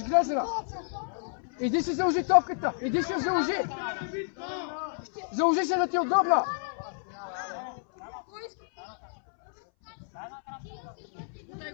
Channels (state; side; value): silent; right; 58 dB below the other